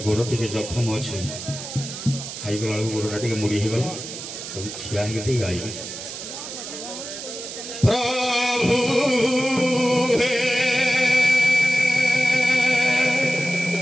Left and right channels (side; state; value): right; noise; hiss, 9 dB below the sound